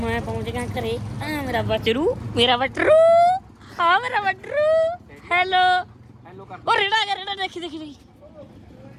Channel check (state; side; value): identical; both; correlation 1.00